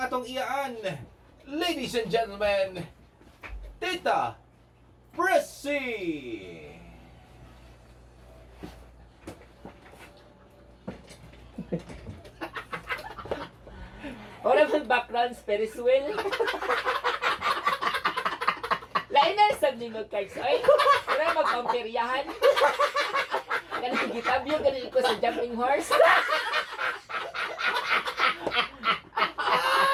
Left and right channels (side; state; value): both; identical; correlation 1.00